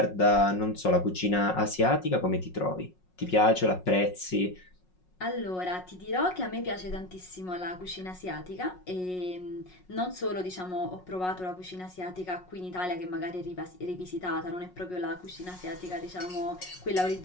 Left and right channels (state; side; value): late; right; 5.5 ms